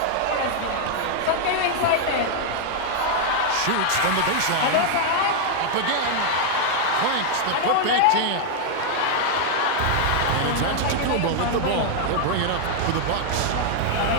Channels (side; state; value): both; different; correlation 0.00